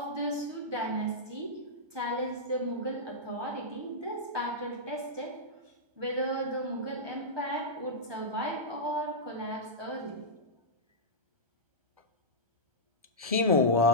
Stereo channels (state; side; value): late; left; 1.3 ms